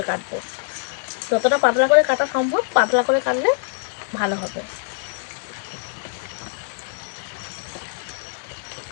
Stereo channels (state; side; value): silent; right; digital silence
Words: কাটবো, যতটা পাতলা করে কাটা সম্ভব পাতলা করে কাটলে ভালো হবে।